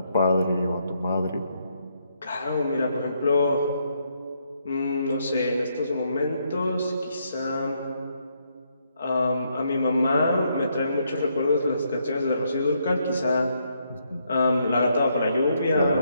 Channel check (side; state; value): both; inverted; correlation -0.75